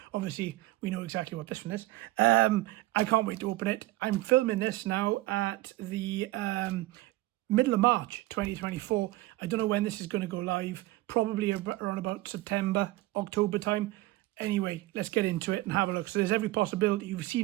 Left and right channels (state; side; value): quieter; left; 18.4 dB